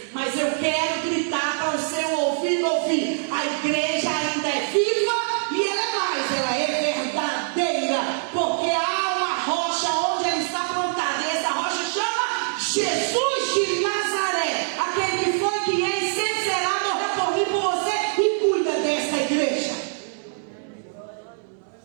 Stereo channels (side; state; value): left; silent; digital silence